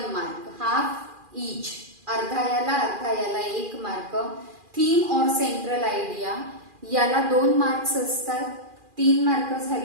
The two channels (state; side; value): late; left; 2.4 ms